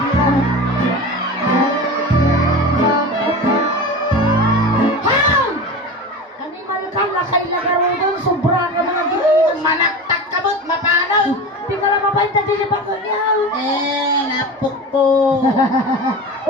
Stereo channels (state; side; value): normal; both; correlation 0.30